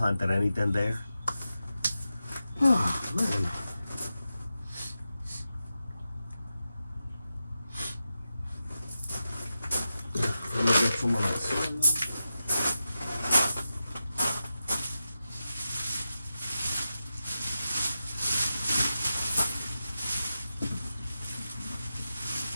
anything there. Oh, man. Let me get some of that soil.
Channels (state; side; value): inverted; both; correlation -0.91